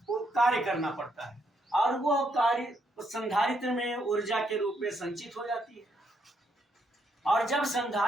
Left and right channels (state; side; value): normal; both; correlation 0.75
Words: कार्य करना पड़ता है और वह कार्य संधारित्र में ऊर्जा के रूप में संचित हो जाती है। और जब